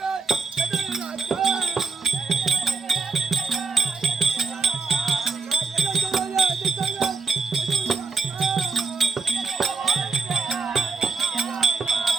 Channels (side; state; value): left; quieter; 4.3 dB